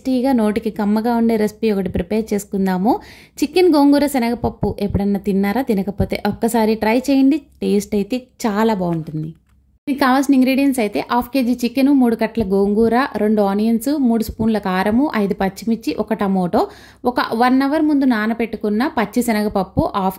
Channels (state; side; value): identical; both; correlation 1.00